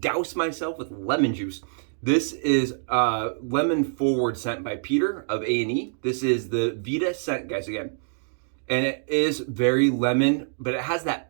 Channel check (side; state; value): left; silent; digital silence